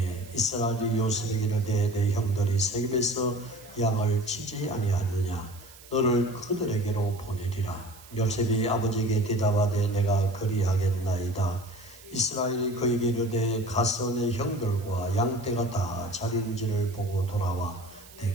이스라엘이 요셉에게 이르되 내 형들이 세겜에서 양을 치지 아니하느냐? 너를 그들에게로 보내리라. 요셉이 아버지에게 대답하되 내가 그리하겠나이다. 이스라엘이 그에게 이르되 가서 내 형들과 양떼가 다 자리인지를 보고 돌아와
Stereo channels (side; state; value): right; noise; hiss, 21 dB below the sound